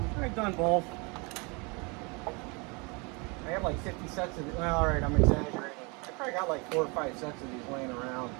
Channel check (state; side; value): quieter; left; 30.3 dB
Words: I've done both. I have like 50 sets of it. Well, all right, I'm exaggerating. probably got like 4 or 5 sets of these laying around.